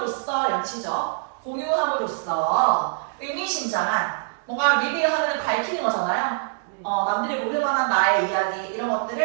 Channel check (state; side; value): silent; left; digital silence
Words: 양치죠. 공유함으로써 의미심장한 뭔가 리뷰하는 밝히는 거잖아요. 남들이 모를 만한 나의 이야기 이런